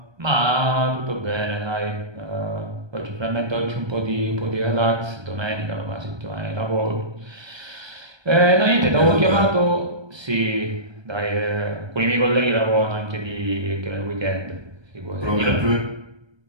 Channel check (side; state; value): left; late; 1.3 ms